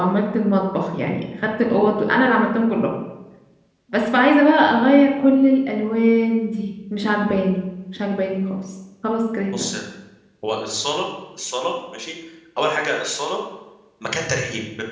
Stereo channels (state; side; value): identical; both; correlation 1.00